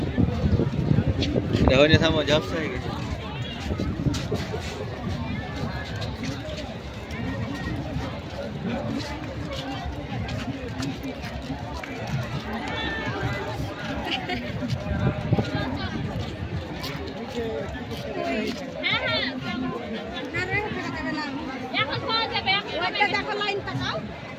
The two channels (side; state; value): both; identical; correlation 1.00